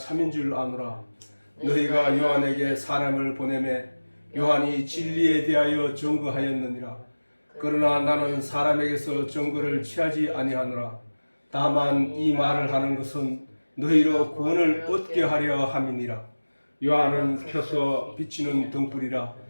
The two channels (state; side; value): inverted; both; correlation -1.00